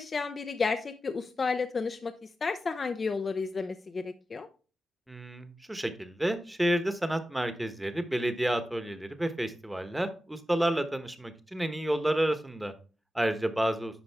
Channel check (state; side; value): normal; both; correlation 0.92